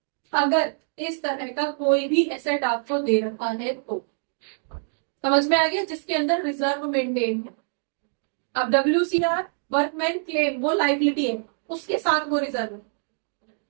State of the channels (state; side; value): silent; left; digital silence